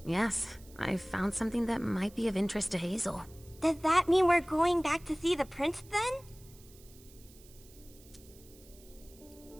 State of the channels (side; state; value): right; noise; hiss, 24 dB below the sound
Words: Yes, I found something that might be of interest to Hazel. Does that mean we're going back to see the prince then?